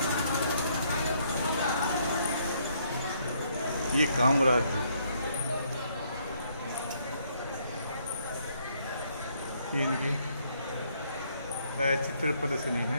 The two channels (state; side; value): inverted; both; correlation -0.69